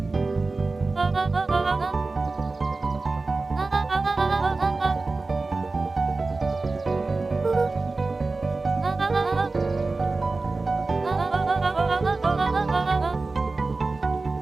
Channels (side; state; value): left; quieter; 3.6 dB